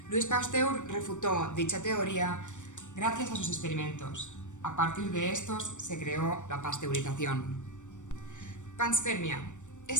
Louis Pasteur refutó dicha teoría gracias a sus experimentos. A partir de estos se creó la pasteurización. Panspermia.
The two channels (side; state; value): right; late; 0.85 ms